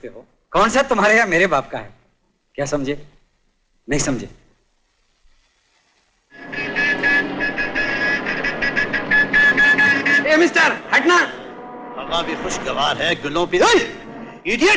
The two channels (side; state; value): both; identical; correlation 1.00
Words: हो। कौन सा तुम्हारे या मेरे बाप का है? क्या समझे? नहीं समझे? ए मिस्टर, हटना। हवा भी खुशगवार है, गुलों पे।